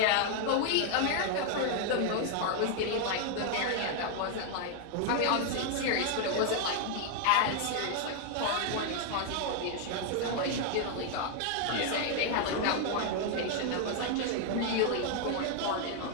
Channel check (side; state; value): both; different; correlation 0.00